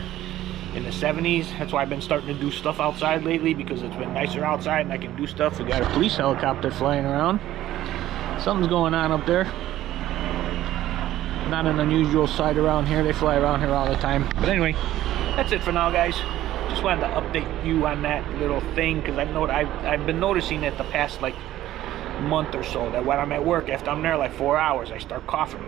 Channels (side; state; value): left; quieter; 13.9 dB